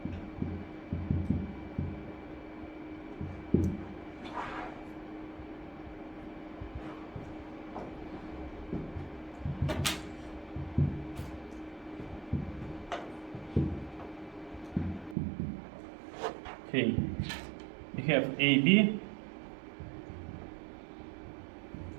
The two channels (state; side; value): drops out; left; at 15.2 s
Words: Okay, we have AB